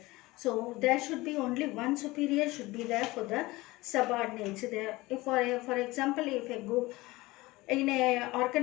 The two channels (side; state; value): right; quieter; 20.5 dB